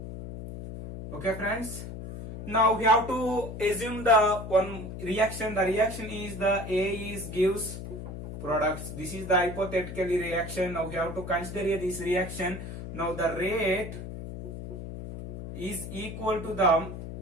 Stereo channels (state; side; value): noise; left; hum, 9 dB below the sound